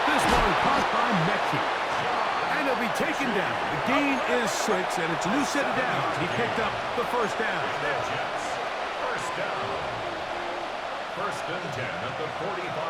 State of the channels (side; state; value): both; identical; correlation 1.00